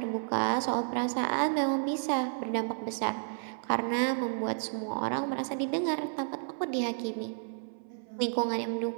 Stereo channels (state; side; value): silent; left; 57 dB below the other